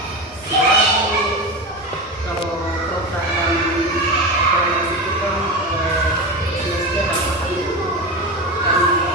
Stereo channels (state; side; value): normal; both; correlation 0.22